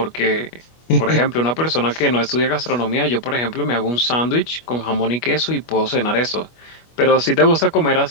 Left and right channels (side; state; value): right; late; 25 ms